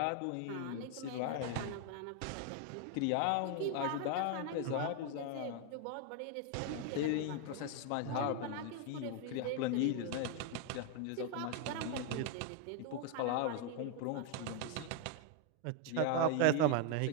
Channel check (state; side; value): different; both; correlation 0.01